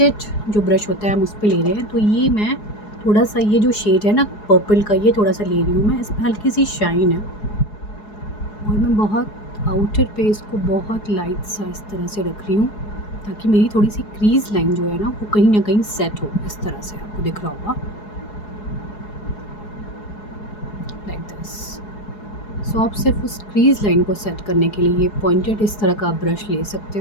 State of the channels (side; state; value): right; late; 4.8 ms